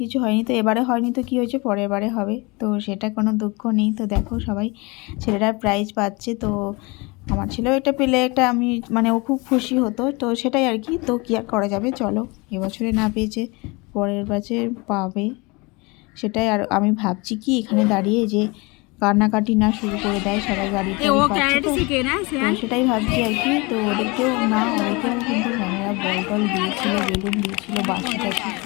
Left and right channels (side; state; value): right; quieter; 26.4 dB